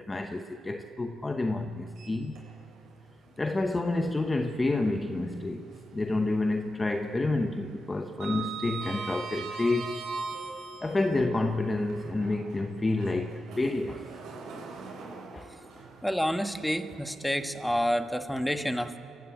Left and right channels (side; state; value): both; normal; correlation 0.93